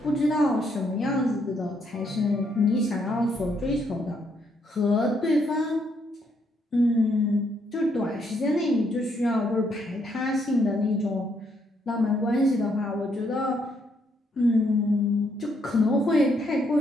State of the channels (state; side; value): normal; both; correlation 0.73